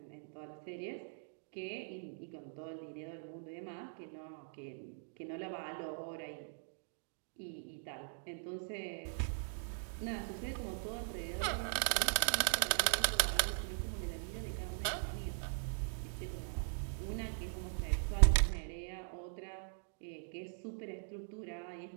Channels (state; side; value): silent; left; digital silence